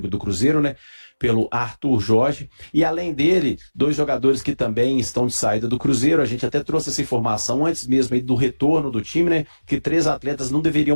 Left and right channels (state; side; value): inverted; both; correlation -1.00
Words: do Cruzeiro, né? Pelo Arthur Jorge, e além dele, 2 jogadores que também estão de saída do Cruzeiro. A gente até trouxe essa informação antes mesmo aí do retorno do time, né, que 3 atletas não